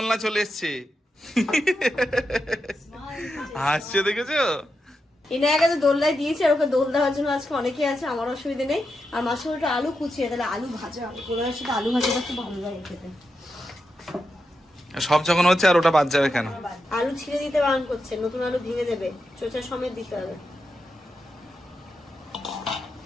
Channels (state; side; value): normal; both; correlation 0.87